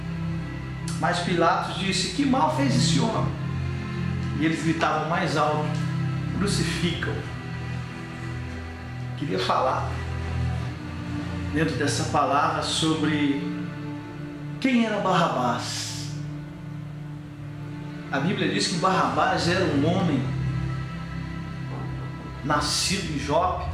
Mas Pilatos disse: Que mal fez esse homem? E eles gritavam mais alto: Crucificam! Queria falar dentro dessa palavra sobre quem era Barrabás. A Bíblia diz que Barrabás era um homem nascido em Jope,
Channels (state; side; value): identical; both; correlation 1.00